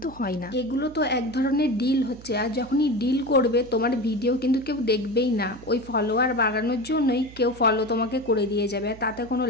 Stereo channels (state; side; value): noise; right; hum, 19 dB below the sound